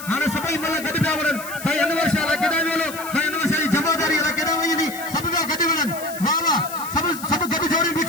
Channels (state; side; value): noise; left; hiss, 13 dB below the sound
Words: हाणे सभई मल गॾु पिया वञनि साईं अनवर शाह लाइ केॾां वियो साईं अनवर शाह जी जमादारी लाइ केॾां वई हली सभु पिया गॾु वञनि वाह वाह सभु गॾु जोड़ियूं